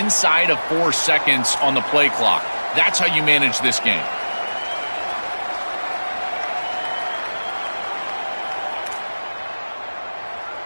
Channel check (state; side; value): inverted; both; correlation -1.00